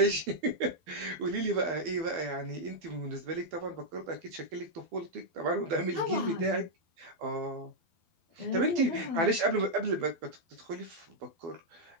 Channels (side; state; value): left; late; 12 ms